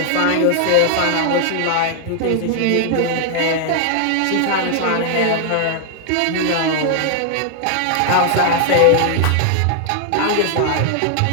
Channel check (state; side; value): different; both; correlation 0.00